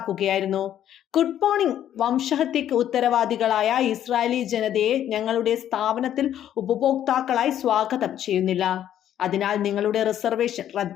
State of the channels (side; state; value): right; quieter; 10.9 dB